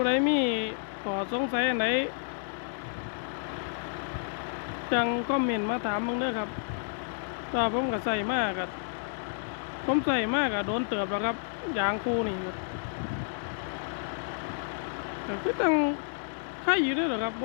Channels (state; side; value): silent; right; digital silence